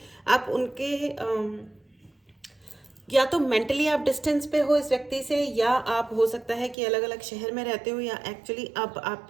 आप उनके या तो मेंटली आप डिस्टेंस पे हो इस व्यक्ति से, या आप हो सकता है कि अलग अलग शहर में रहते हो, या एक्चुअली अब आप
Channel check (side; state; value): left; drops out; at 6.8 s